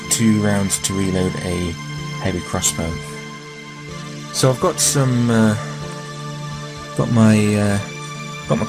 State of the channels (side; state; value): both; identical; correlation 1.00